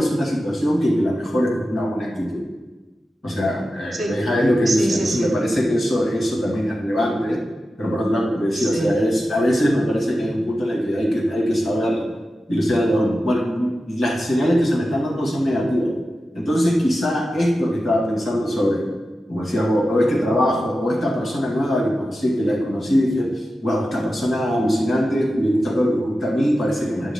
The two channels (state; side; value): normal; both; correlation 0.92